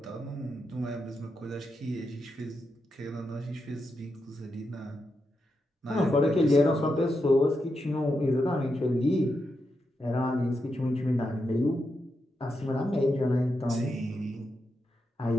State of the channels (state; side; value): normal; both; correlation 0.85